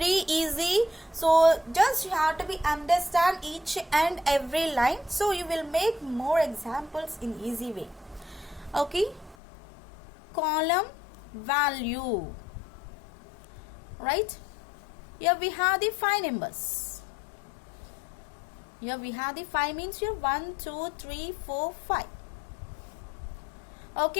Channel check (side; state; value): right; drops out; at 9.3 s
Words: easy. So just you have to be understand each and every line. So you will make more examples in easy way. Okay, column value, right? Here we have the 5 numbers. Here we have the 5 means here 1, 2, 3, 4, 5.